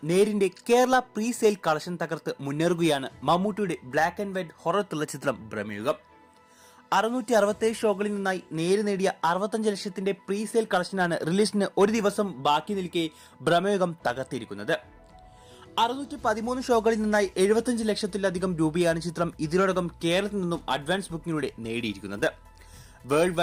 നേരിന്റെ കേരള പ്രീ സെയിൽ കളക്ഷൻ തകർത്ത് മുന്നേറുകയാണ് മമ്മൂട്ടിയുടെ black and white horror thriller ചിത്രം ഭ്രമയുഗം. 667 ഷോകളിൽ നിന്നായി നേര് നേടിയ 65 ലക്ഷത്തിന്റെ പ്രീ സെയിൽ കളക്ഷനാണ് റിലീസിന് ഒരു ദിവസം ബാക്കി നിൽക്കെ ഭ്രമയുഗം തകർത്തിരിക്കുന്നത്. 613 ഷോകളിൽ നിന്നായി 75 ലക്ഷത്തിലധികം രൂപയാണ് ചിത്രം ഇതിനോടകം കേരളത്തിൽ നിന്നും അഡ്വാൻസ് ബുക്കിങ്ങിലൂടെ നേടിയിരിക്കുന്നത്. വേൾഡ്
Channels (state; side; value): identical; both; correlation 1.00